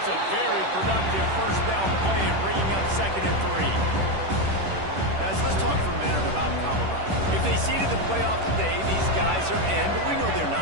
a very productive first down play and bringing up 2nd and 3. Guys, let's talk for a minute about Colorado. If they seeded the playoff today, these guys are in, but we know they're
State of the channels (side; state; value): left; late; 10 ms